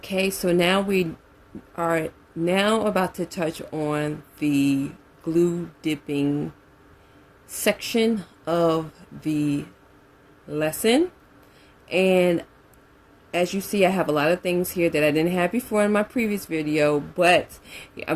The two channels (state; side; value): identical; both; correlation 1.00